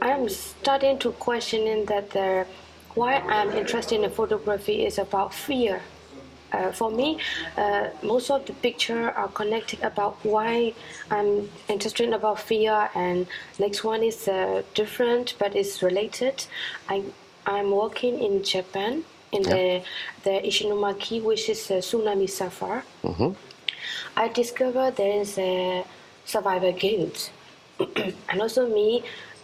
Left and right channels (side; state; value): both; identical; correlation 1.00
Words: I'm starting to questioning that why I'm interested in photography is about fear. For me, most of the picture are connected about why I'm interested about fear, and next one is different but it's related. I'm working in Japan in the Ishinomaki, which is a tsunami suffer. I discovered there is a survivor guilt, and also me,